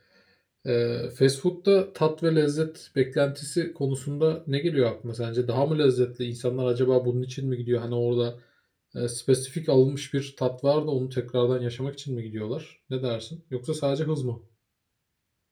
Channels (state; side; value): identical; both; correlation 1.00